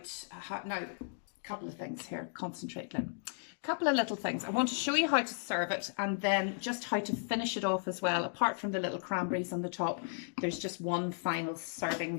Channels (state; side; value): silent; right; digital silence